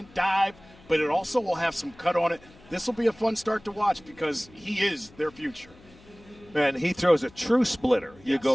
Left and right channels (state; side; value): noise; left; hum, 25 dB below the sound